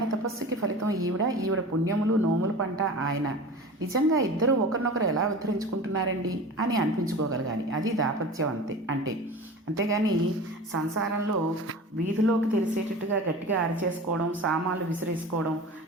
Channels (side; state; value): both; normal; correlation 0.35